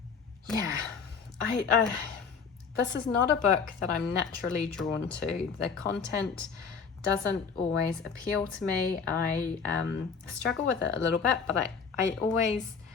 This is not a book that I'm naturally drawn to. The content doesn't always appeal to me. I struggle with it a little bit, but I always,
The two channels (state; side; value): quieter; right; 5.8 dB